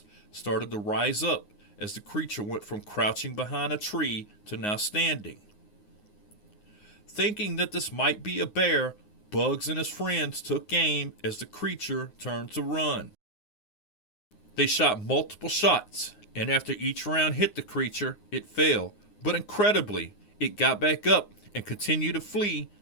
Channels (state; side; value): late; right; 9.6 ms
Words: started to rise up as the creature went from crouching behind a tree to now standing. Thinking that this might be a bear, Bugs and his friends took aim as the creature turned to run. They shot multiple shots, and after each round hit the creature, it fell, but incredibly, it got back up and continued to flee